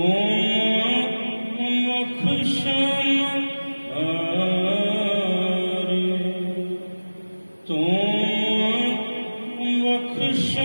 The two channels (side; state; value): both; inverted; correlation -1.00